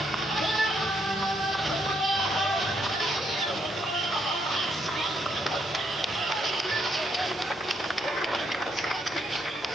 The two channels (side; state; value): both; normal; correlation 0.75